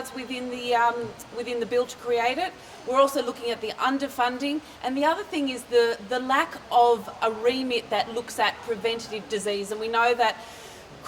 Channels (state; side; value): identical; both; correlation 1.00